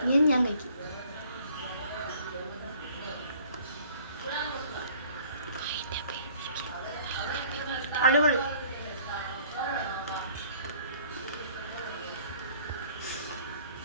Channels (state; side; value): inverted; both; correlation -0.55